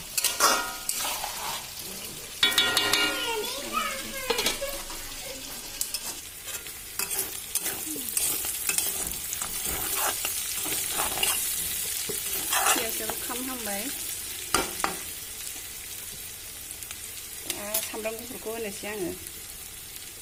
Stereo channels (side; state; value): both; identical; correlation 1.00